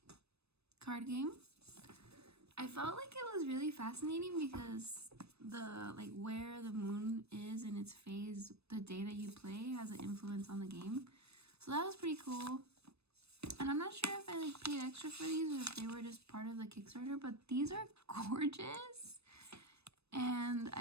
card game. I felt like it was really fascinating because the, like, where the moon is in its phase the day that you play has an influence on the game. So that was pretty cool. And I'm not sure if I like paid extra for these or if they were just part of the Kickstarter, but these are gorgeous. And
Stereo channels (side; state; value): left; late; 0.79 ms